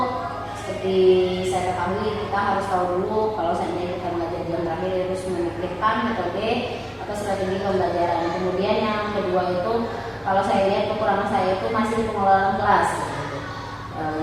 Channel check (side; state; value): both; identical; correlation 1.00